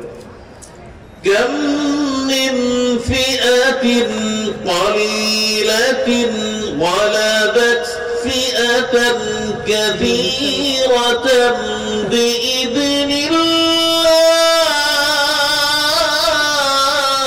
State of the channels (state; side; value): identical; both; correlation 1.00